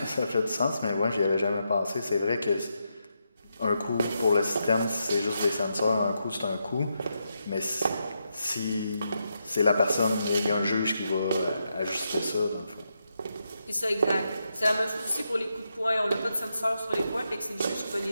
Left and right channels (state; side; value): inverted; both; correlation -0.84